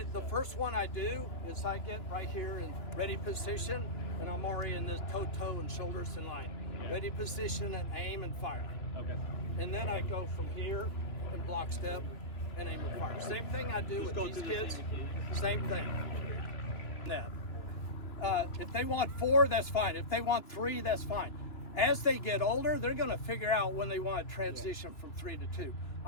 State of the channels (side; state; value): right; late; 2.9 ms